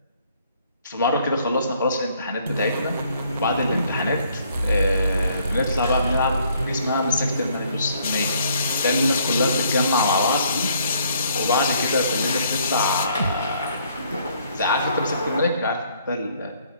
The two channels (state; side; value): inverted; both; correlation -0.65